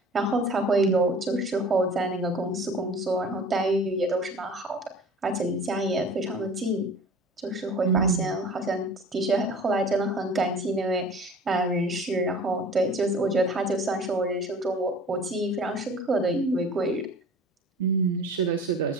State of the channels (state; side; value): normal; both; correlation 0.44